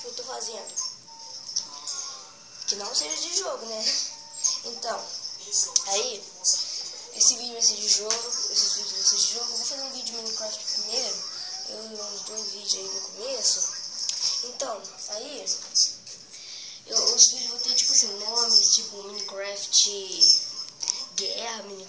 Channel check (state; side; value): identical; both; correlation 1.00